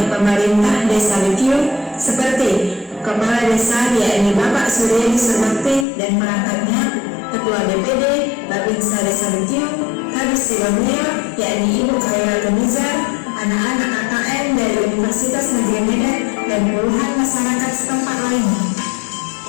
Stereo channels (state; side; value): drops out; right; at 5.9 s